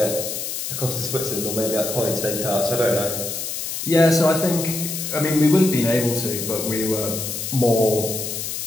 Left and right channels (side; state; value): left; noise; hiss, 4 dB below the sound